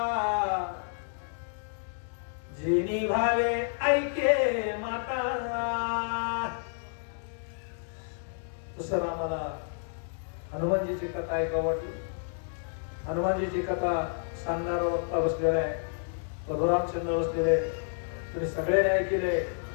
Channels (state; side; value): silent; right; 58 dB below the other